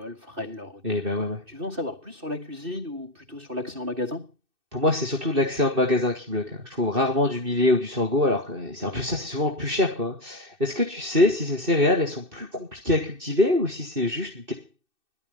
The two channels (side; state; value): left; late; 2.6 ms